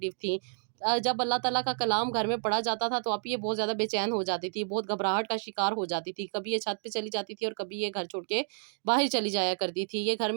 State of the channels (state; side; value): silent; left; digital silence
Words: تھی۔ جب اللہ تعالیٰ کا کلام گھر میں پڑھا جاتا تھا تو آپ یہ بہت زیادہ بے چین ہو جاتی تھی، بہت گھبراہٹ کا شکار ہو جاتی تھی، کبھی یہ چھت پہ چلی جاتی تھی اور کبھی یہ گھر چھوڑ کے باہر چلی جایا کرتی تھی، یہ گھر